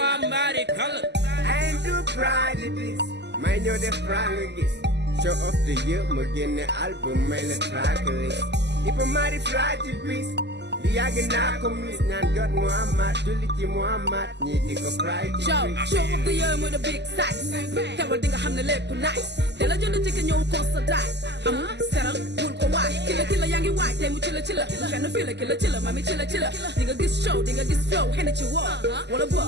mbaari kàlla I am too proud of this may ñoo def franc gis show of the year ma génne album may la track list Iba Mar di fly ci bis di yàgg naa ko mis ñaan jot Muhammad julli ci Muhammad ñi di ko fry ci show of the year mooy the big size teewal di nga xam ne lépp nice te la jënd ci ka ñëw constaté amul seral bul ko waay ki la yaa ngi waay tey mu ci la kenn fii la ki la mami ci la di nga gis show di nga gis flow xene ci woo wala boo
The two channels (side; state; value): left; late; 0.50 ms